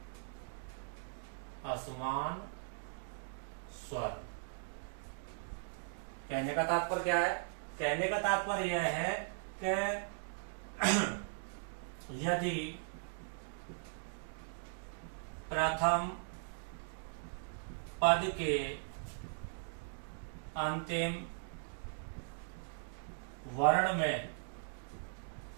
असमान स्वर, कहने का तात्पर्य क्या है, कहने का तात्पर्य यह है कि यदि प्रथम पद के अंतिम वर्ण में,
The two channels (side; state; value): left; silent; digital silence